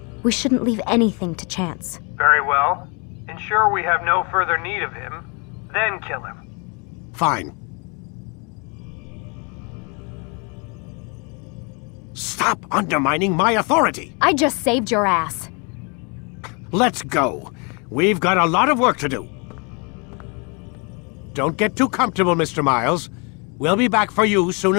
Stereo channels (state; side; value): quieter; right; 32.6 dB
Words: We shouldn't leave anything to chance. Very well. Ensure we have no further need of him, then kill him. Fine. Stop undermining my authority! I just saved your ass. Let's go. We've got a lot of work to do. Don't get too comfortable, Mr. Miles. We'll be back for you soon